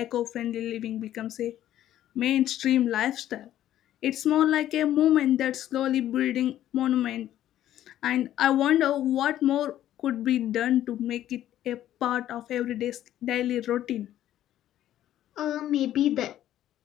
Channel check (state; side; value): quieter; right; 12.4 dB